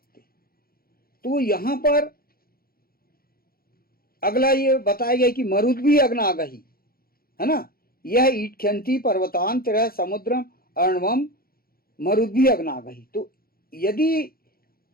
हैं। तो यहां पर अगला ये बताया गया कि मरुद भी अग्नागही, है ना, यह ईटख्यंती पर्वतान तेरह समुद्रम अर्णवम मरुद भी अग्नागही। तो यदि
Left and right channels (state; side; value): late; right; 0.43 ms